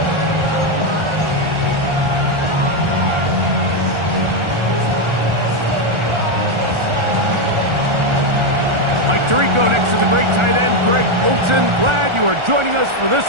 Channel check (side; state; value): left; late; 1.4 ms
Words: Tirico next to the great tight end, Greg Olson. Glad you are joining us for this